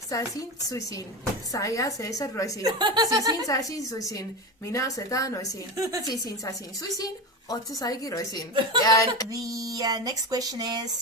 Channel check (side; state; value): both; normal; correlation 0.22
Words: Suisin, Saya, Cesar, Roisin, Sisin, Sasin, Suisin, Mina, Seta, Noisin, Sisin, Sasin, Suisin, Otto, Saigi, Roisin. And the next question